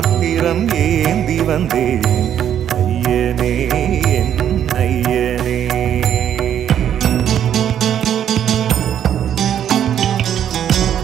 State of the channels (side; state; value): left; quieter; 9.8 dB